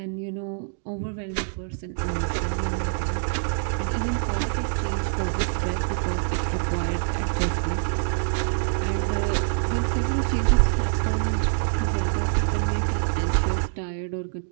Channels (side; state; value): left; silent; digital silence